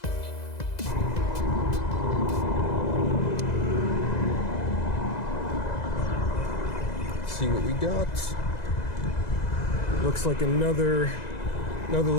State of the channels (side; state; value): right; late; 2.0 ms